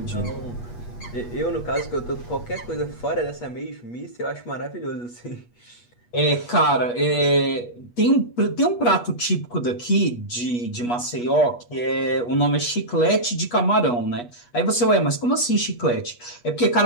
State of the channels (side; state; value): right; late; 8.3 ms